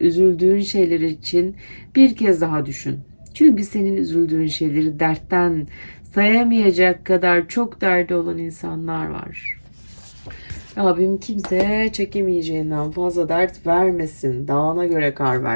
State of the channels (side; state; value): both; inverted; correlation -1.00